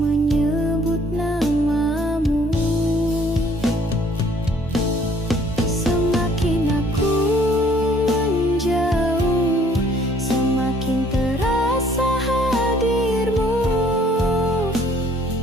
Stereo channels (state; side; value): normal; both; correlation 0.59